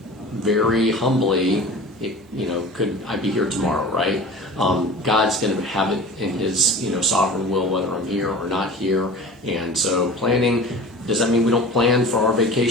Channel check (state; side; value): normal; both; correlation 0.38